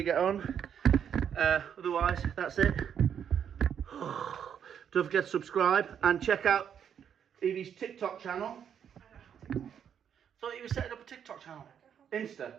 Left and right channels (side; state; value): left; quieter; 8.4 dB